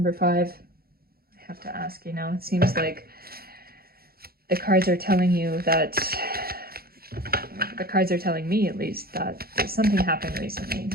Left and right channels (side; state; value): left; late; 0.44 ms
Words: 5? I have to ask, you know, it seems like the cards are telling you that, the cards are telling me at least, that something happened recently